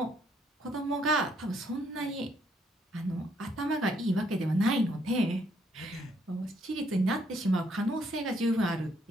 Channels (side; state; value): both; normal; correlation 0.70